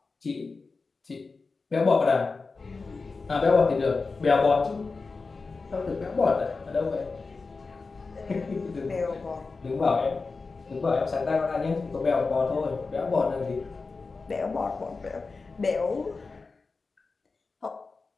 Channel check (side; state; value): right; quieter; 4.2 dB